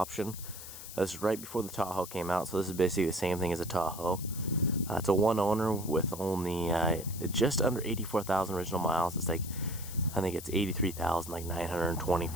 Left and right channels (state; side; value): noise; left; hiss, 12 dB below the sound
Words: This is right before the Tahoe came out, so this is basically the same thing as a Tahoe. It's a one owner with only just under 84,000 original miles. It's like, I think it's